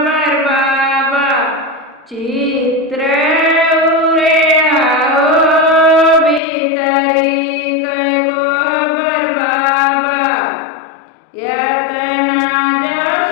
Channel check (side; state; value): right; drops out; at 6.4 s